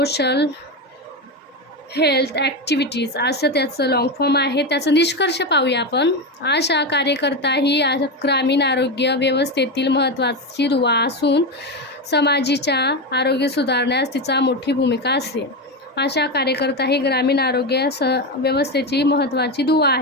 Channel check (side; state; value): both; normal; correlation 0.15